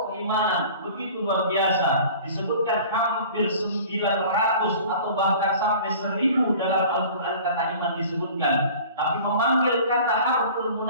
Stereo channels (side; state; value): both; inverted; correlation -0.44